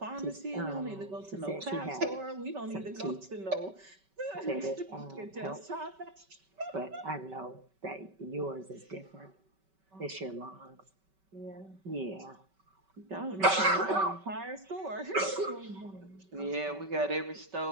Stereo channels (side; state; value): left; late; 5.2 ms